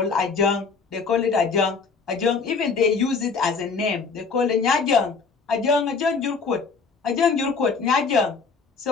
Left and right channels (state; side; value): quieter; right; 4.9 dB